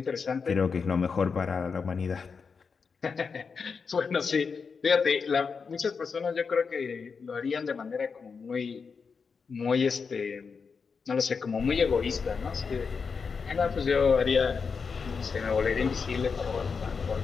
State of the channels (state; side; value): quieter; right; 5.4 dB